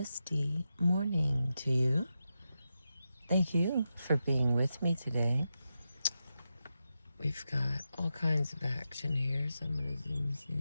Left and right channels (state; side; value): inverted; both; correlation -0.89